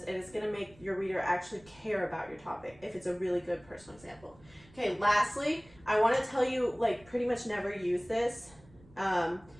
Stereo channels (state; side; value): noise; right; rumble, 25 dB below the sound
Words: and it's going to make your reader actually care about your topic if it's a really good personal example. Okay, lastly, I want to tell you, like, pretty much never use this.